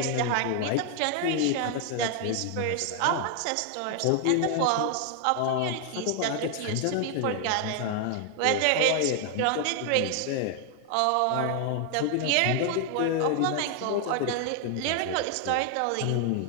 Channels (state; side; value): different; both; correlation 0.00